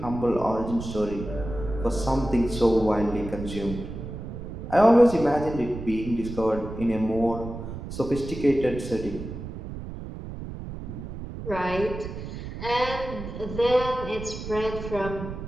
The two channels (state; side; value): noise; right; rumble, 9 dB below the sound